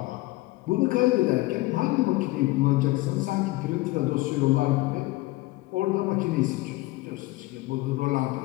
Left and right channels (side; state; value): right; quieter; 19.8 dB